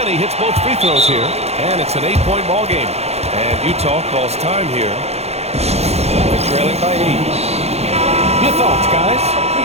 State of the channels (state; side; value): late; left; 0.31 ms